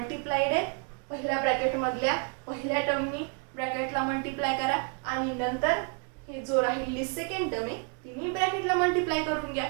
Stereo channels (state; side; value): quieter; left; 38.3 dB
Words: आहे, पहिल्या ब्रॅकेट मधल्या पहिल्या टर्मनी ब्रॅकेटला मल्टिप्लाय करा आणि नंतर हे जो राहिलेली सेकंड टर्म आहे तिन्ही ब्रॅकेटला मल्टिप्लाय करून घ्या.